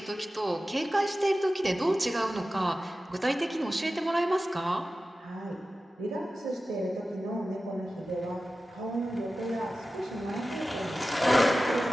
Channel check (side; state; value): both; normal; correlation 0.94